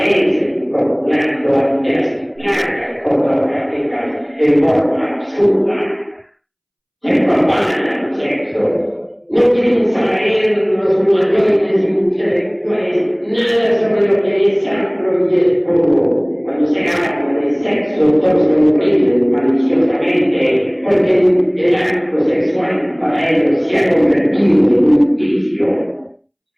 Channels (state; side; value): identical; both; correlation 1.00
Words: contemplando ante las placas fotográficas en forma absurda. Se propaganda el sexo. No quieren saber los humanoides intelectuales nada sobre lo que es sacro y es puro. Cuando se habla de sexo, todos lo oprimen maliciosamente, porque el acto sexual para ellos se ha convertido en un vicio.